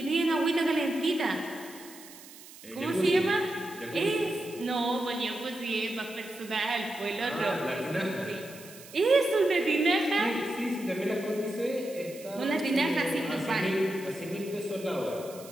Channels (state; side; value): noise; right; hiss, 18 dB below the sound